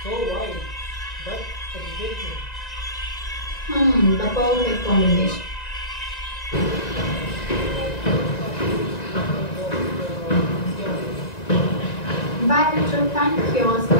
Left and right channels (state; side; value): late; right; 1.9 ms